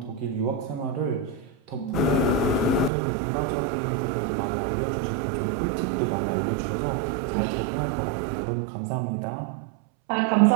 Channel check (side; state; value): left; drops out; at 2.9 s